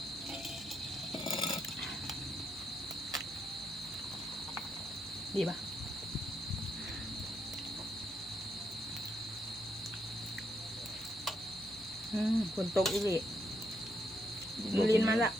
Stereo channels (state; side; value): noise; left; hum, 21 dB below the sound